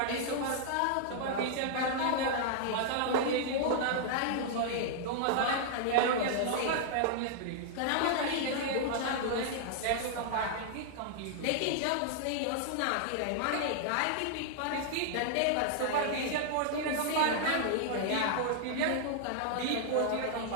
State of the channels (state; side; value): different; both; correlation -0.01